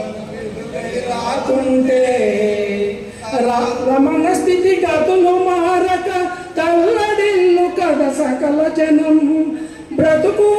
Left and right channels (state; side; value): identical; both; correlation 1.00